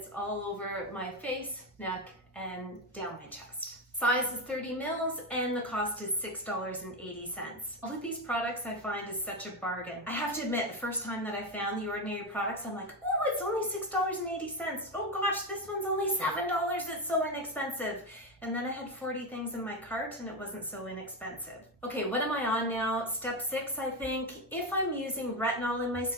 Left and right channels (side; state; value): both; normal; correlation 0.13